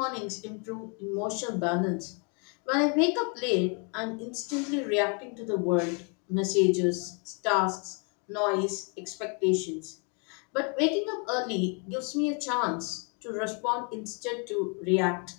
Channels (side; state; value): right; quieter; 36.7 dB